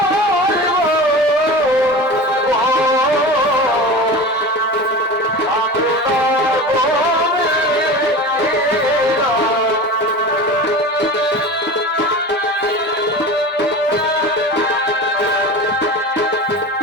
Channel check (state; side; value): normal; both; correlation 0.32